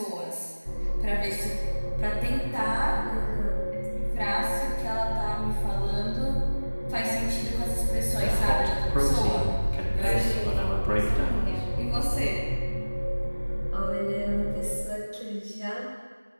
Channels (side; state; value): both; inverted; correlation -1.00